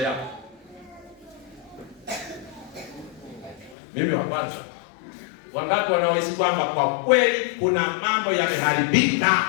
Mimi wa kwanza. Wangapi wanaohisi kwamba kwa kweli kuna mambo yameharibika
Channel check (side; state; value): right; drops out; at 3.8 s